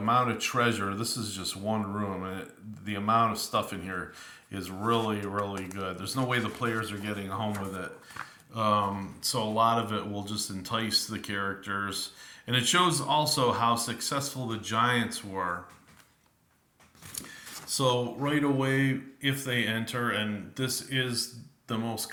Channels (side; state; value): both; identical; correlation 1.00